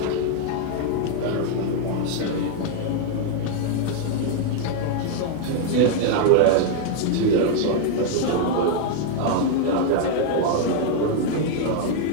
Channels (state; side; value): different; both; correlation 0.00